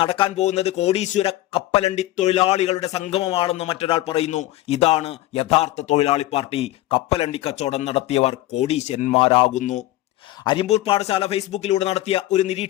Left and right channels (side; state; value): right; quieter; 16.1 dB